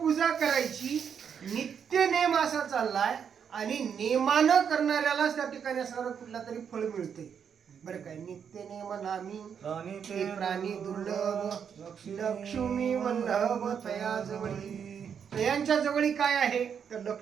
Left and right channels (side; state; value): left; quieter; 7.5 dB